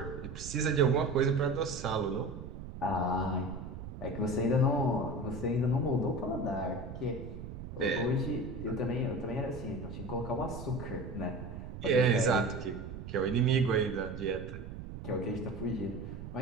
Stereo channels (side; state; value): right; noise; rumble, 10 dB below the sound